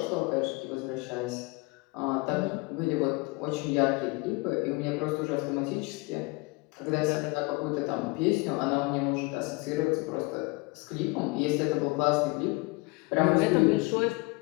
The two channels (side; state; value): right; quieter; 26.0 dB